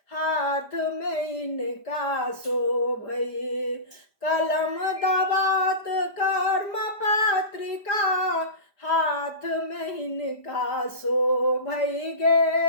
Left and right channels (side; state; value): right; late; 5.1 ms